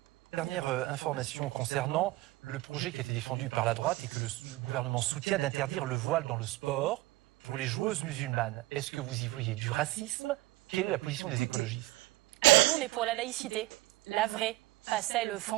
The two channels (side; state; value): left; quieter; 18.6 dB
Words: Dernière information concernant le projet qui a été défendu par la droite et que le gouvernement soutient d'interdire le voile dans le sport pour les joueuses musulmanes. Est-ce que vous y voyez du racisme? Quelle est la position des écologistes? Alors nous, on est pour la laïcité, la vraie, pas celle